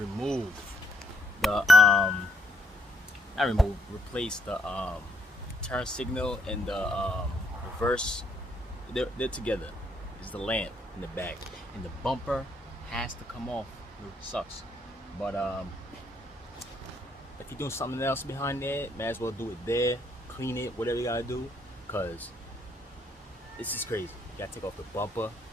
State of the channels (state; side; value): normal; both; correlation 0.71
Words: the replace the turn signal and the reverse. They're together. It's the lamp in the back, and the bumper has to come off. It sucks, but if you're doing something else behind there, may as well do it there. Clean it, whatever you gotta do, cause this is crazy. You gotta take off the bumper,